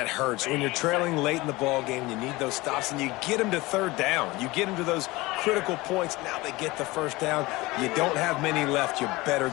hurts. When you're trailing late in the ball game, you need those stops, and you get them to 3rd down. You get them to those critical points. Now they get the first down. You don't have many left. You better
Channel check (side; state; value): right; quieter; 21.2 dB